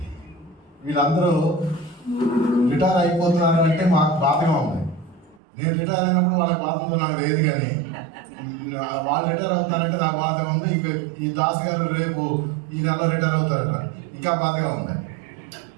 వీళ్ళందరూ రిటైర్ అయిపోతున్నారు అంటే మాకు బాధగా ఉంది. నేను రిటైర్ అయినప్పుడు వాళ్ళకి బాధ ఉందో నాకు తెలియదు, కానీ వాళ్ళు రిటైర్ అవుతున్నారంటే నాకు బాధగా ఉంది. ఇంక ఈ దాస్ గారు రేపు ఈ నెలలో రిటైర్ అవుతారట, ఇంకా బాధగా ఉంది.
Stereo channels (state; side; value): drops out; left; at 5.4 s